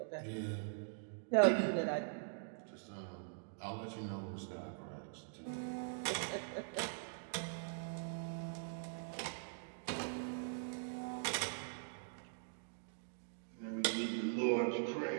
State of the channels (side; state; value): left; silent; digital silence